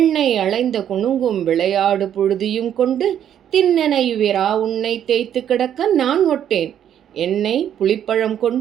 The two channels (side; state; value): left; quieter; 9.9 dB